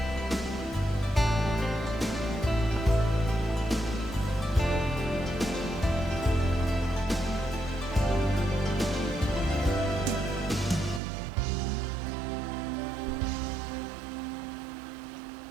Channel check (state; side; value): drops out; left; at 11.0 s